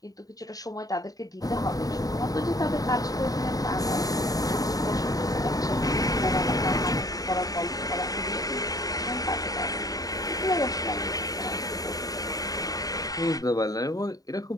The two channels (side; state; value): right; late; 0.18 ms